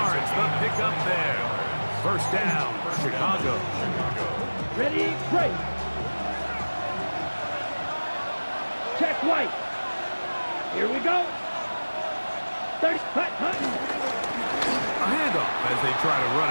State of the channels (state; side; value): inverted; both; correlation -1.00